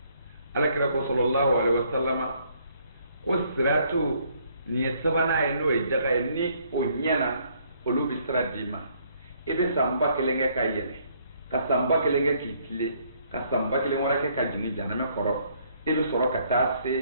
alakira ko sallallahu alaihi wasallama ko siratu nin ye sabanan ye n'o ye jaga ye ni o ɲɛna olu bɛ sira d'i ma i bɛ san 1000 kɛ ka yɛlɛ ka san 1000 kɛ k'i tile ka san 1000 wɛrɛ kɛ ka jigin jahanama kɔrɔ i bɛ sɔrɔ ka taa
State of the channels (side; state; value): both; inverted; correlation -0.66